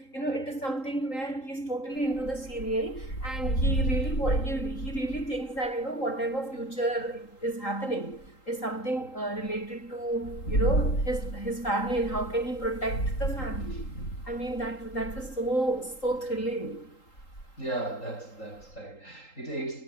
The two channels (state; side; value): late; right; 3.8 ms